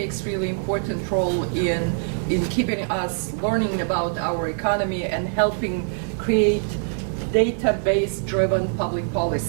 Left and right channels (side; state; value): left; silent; 63 dB below the other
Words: really important role in keeping us learning about our economy and helping create database driven public